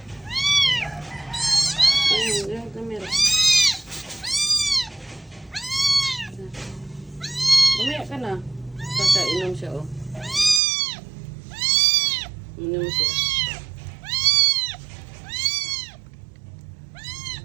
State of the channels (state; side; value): drops out; left; at 10.6 s